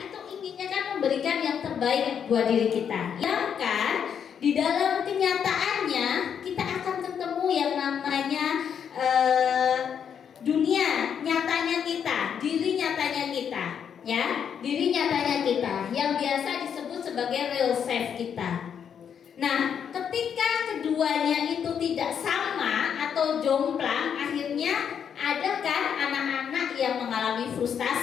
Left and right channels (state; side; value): quieter; right; 7.9 dB